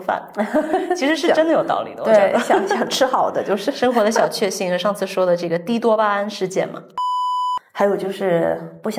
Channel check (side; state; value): both; identical; correlation 1.00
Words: 其实是真的有道理的。我觉得想吃好的，就是生活的小确幸。上次说的这个低多巴胺事件嘛。还有就是不